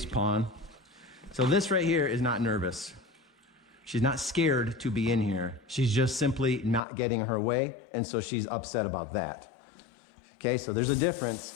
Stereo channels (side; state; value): right; drops out; at 6.8 s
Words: pawing. So this right here is not nervous. She's not scared to be in here. She's just simply not getting her way, and so she's upset about that. Okay, so there's a